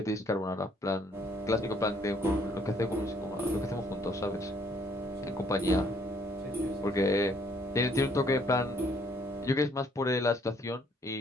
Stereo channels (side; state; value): both; normal; correlation 0.65